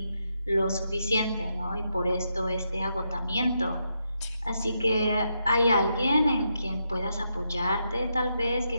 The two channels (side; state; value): both; inverted; correlation -0.82